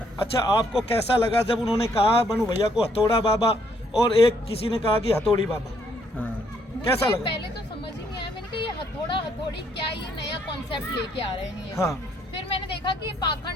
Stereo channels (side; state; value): both; normal; correlation 0.70